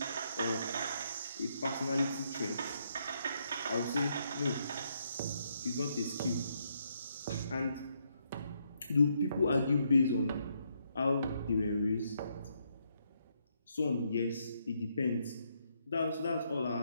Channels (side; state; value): both; inverted; correlation -0.76